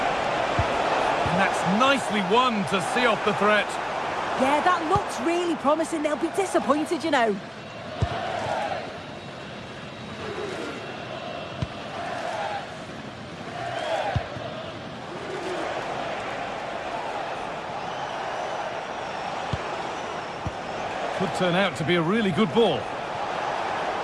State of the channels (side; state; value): both; identical; correlation 1.00